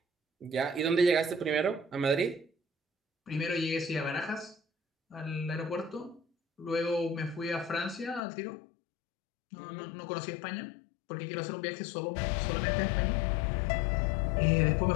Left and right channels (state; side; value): drops out; right; at 8.2 s